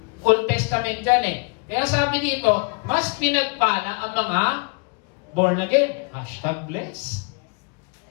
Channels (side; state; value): right; quieter; 33.5 dB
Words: Old Testament dyan eh. Kaya sabi dito, mas pinagpala ang mga born again. #bless.